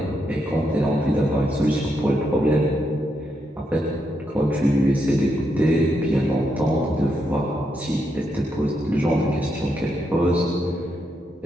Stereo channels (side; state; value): both; normal; correlation 0.81